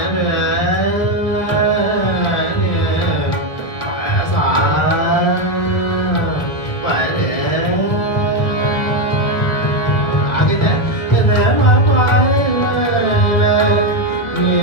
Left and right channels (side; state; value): right; late; 2.0 ms